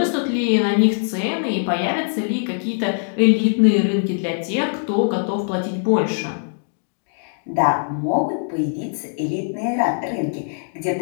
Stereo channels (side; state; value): right; silent; digital silence